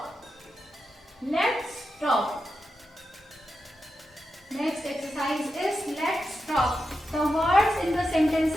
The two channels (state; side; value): normal; both; correlation 0.89